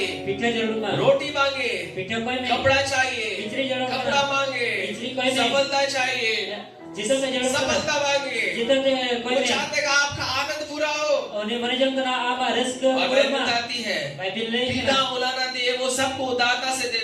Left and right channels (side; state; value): both; identical; correlation 1.00